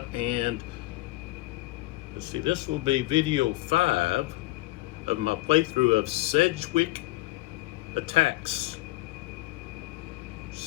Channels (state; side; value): quieter; right; 19.9 dB